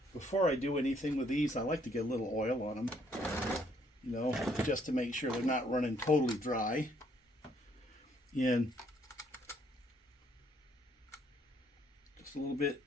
before I do anything with these, I like to get a little oil on them. You know, just to make sure they're not running totally dry. And just a little bit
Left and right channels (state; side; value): normal; both; correlation 0.67